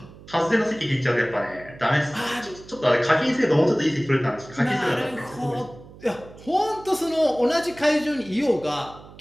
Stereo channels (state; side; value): noise; right; hum, 20 dB below the sound